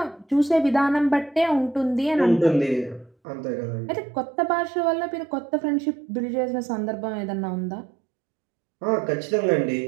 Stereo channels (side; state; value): left; drops out; at 3.2 s